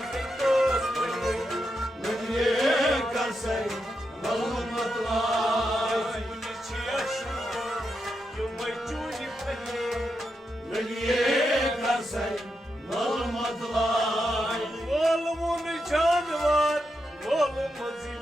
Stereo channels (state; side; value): normal; both; correlation 0.85